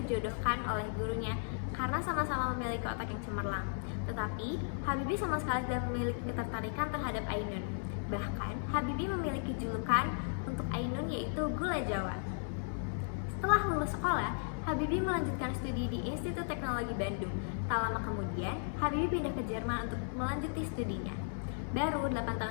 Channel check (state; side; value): silent; right; digital silence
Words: oleh gurunya karena sama-sama memiliki otak yang cemerlang. Tetapi, Habibie sama sekali tidak memiliki ketertarikan terhadap Ainun. Bahkan, Habibie memiliki julukan untuk Ainun yaitu Gula Jawa. Setelah lulus sekolah, Habibie melanjutkan studi di Institut Teknologi Bandung. Tak lama kemudian, Habibie pindah ke Jerman untuk melanjuti studinya. Baru 8